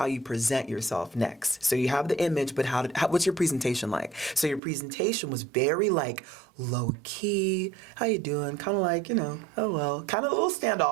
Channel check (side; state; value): left; drops out; at 4.6 s